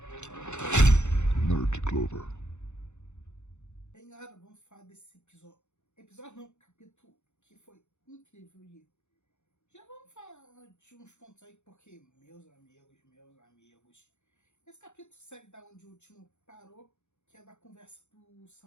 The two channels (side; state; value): right; late; 0.83 ms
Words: Nerd Clover. E aí galera, vamos falar desse episódio. Episódio não, capítulo que foi incrível. E já vamos falar de uns pontos aí, porque, meus amigos, esse capítulo segue da onde o último parou, que é da conversa do